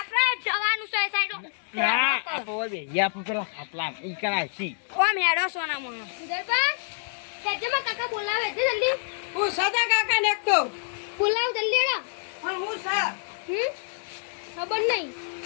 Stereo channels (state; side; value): silent; right; 60 dB below the other